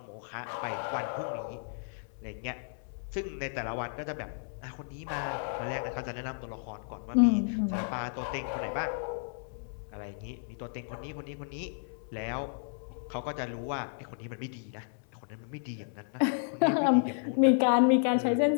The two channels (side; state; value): right; silent; 56 dB below the other